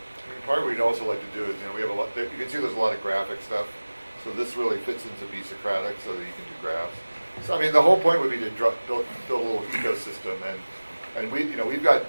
I mean, part of what we'd also like to do is, we have a lot. You can see there's a lot of graphic stuff. So this really fits into be Socratic, so that you can do graphs. So I mean, the whole point would be to build a little ecosystem, and we've got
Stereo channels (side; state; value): both; inverted; correlation -1.00